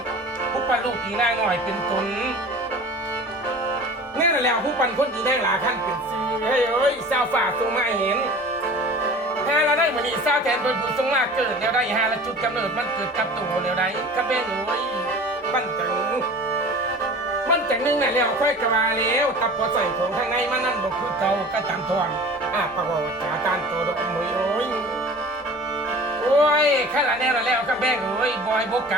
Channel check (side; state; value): both; normal; correlation 0.41